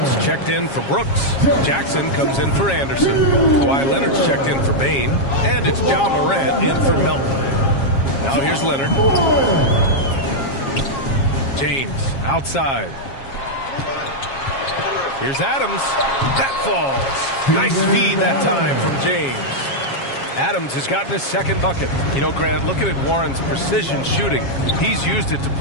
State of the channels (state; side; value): late; right; 7.3 ms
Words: checked in for Brooks. Jackson comes in for Anderson. Kawhi Leonard's checked in for Bane. And it's Ja Morant in for Melton. Now here's Leonard. James outside. Here's Adams. That falls. Nice feed that time from James. Adams has gotten his second bucket. You know, Grant, looking at Warren's precision shooting, he's used it to